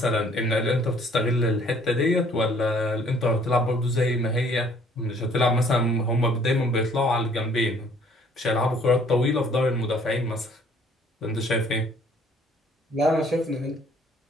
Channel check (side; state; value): both; normal; correlation 0.59